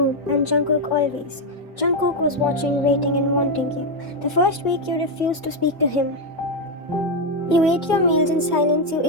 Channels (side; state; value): both; normal; correlation 0.04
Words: and Jungkook always. Jungkook was watching, waiting, and wanting you. The first week you refused to speak to him. You ate your meals in silence, you